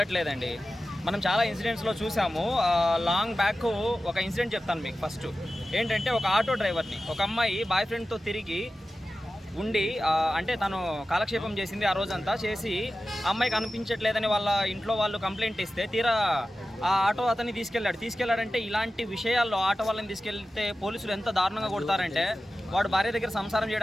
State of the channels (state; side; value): normal; both; correlation 0.94